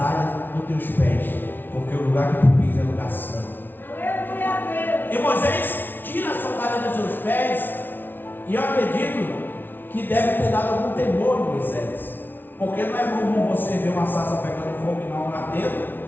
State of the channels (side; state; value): right; late; 0.095 ms